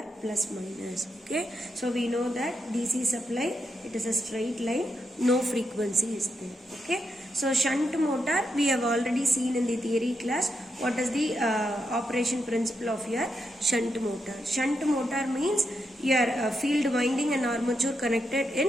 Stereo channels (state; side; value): normal; both; correlation 0.83